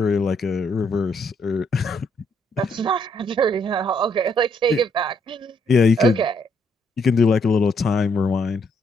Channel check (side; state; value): both; normal; correlation 0.72